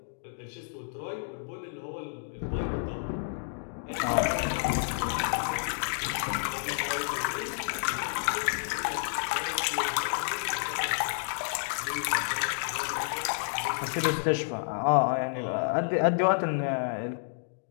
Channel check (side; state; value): right; silent; digital silence